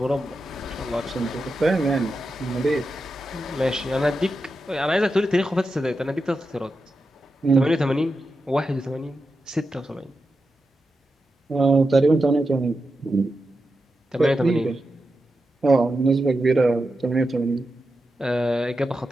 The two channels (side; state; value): both; normal; correlation 0.89